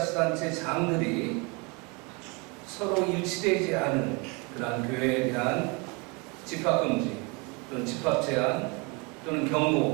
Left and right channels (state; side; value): quieter; left; 29.9 dB